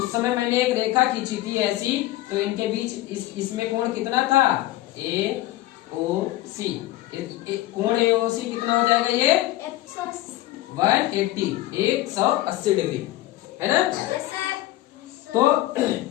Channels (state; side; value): quieter; right; 16.2 dB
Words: समय मैंने एक रेखा खींची थी ऐसी, तो इनके बीच इसमें कोण कितना था, AOC, कोण AOC कितना हो जाएगा, ये 180 डिग्री, है ना? तो